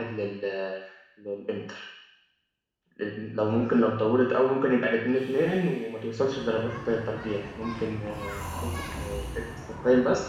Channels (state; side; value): identical; both; correlation 1.00